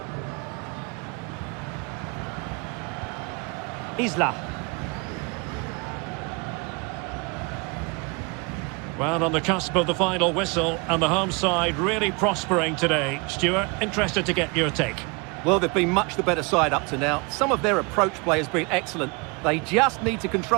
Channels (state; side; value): quieter; left; 29.8 dB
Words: Isla. Well, on the cusp of the final whistle, and the home side really prospering today. Stuart, interested to get your take. Well, they've been much the better side up to now. Some of their approach play has been excellent. They just need to